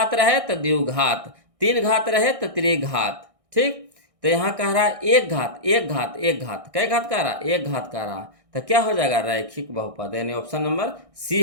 रहे तो द्विघात, 3 घात रहे तो त्रिघात, ठीक। तो यहाँ कह रहा है एक घात, एक घात, एक घात, कै घात कह रहा है, एक घात कह रहा है, तो क्या हो जाएगा, रैखिक बहुपद, यानी ऑप्शन नंबर सी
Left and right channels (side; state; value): left; late; 1.6 ms